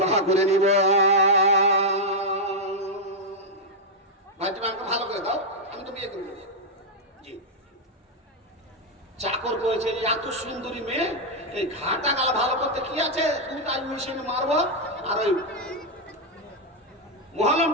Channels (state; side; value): normal; both; correlation -0.01